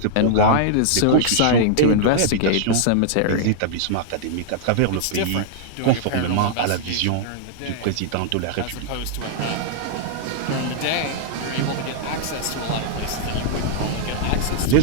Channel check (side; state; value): both; different; correlation -0.01